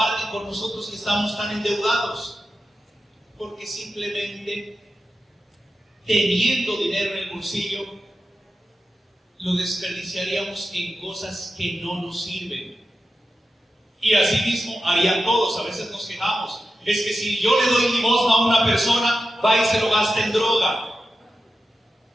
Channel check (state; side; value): normal; both; correlation 0.91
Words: con nosotros que estamos tan endeudados? Porque simplemente teniendo dinero en el bolsillo, lo desperdiciaríamos en cosas que no nos sirven. Y así mismo harían todos. A veces nos quejamos. Es que si yo le doy limosna a una persona, va y se lo gasta en droga.